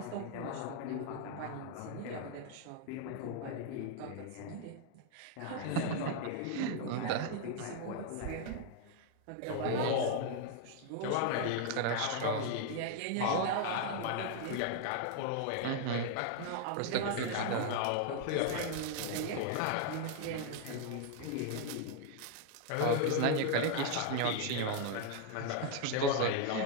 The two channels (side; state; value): both; different; correlation 0.00